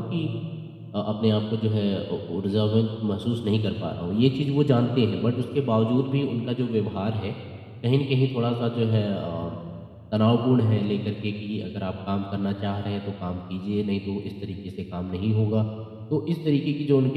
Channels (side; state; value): both; identical; correlation 1.00